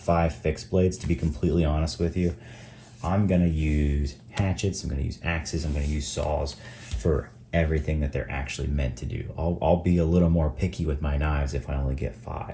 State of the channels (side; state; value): both; identical; correlation 1.00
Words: fixed blades, to be completely honest with you, I'm gonna use hatchets, I'm gonna use axes, I'm gonna use saws for everything that they're actually meant to do. I'll be a little more picky with my knives if I only get